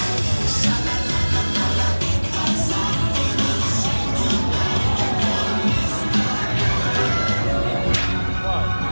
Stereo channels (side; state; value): both; inverted; correlation -1.00